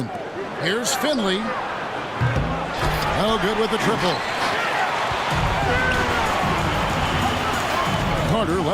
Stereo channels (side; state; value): both; identical; correlation 1.00